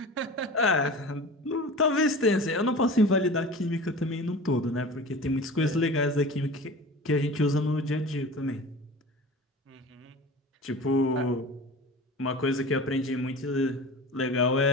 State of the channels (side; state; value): both; normal; correlation 0.36